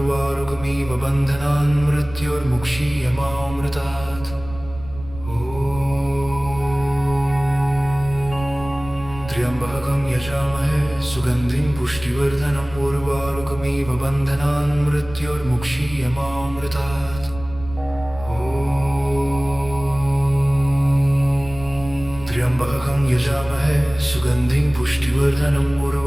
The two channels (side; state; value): right; noise; rumble, 14 dB below the sound